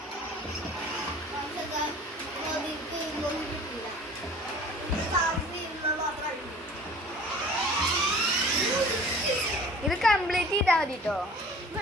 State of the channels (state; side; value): normal; both; correlation 0.46